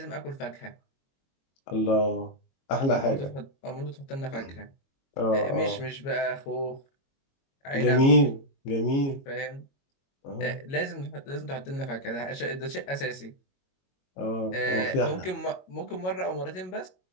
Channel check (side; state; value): right; late; 22 ms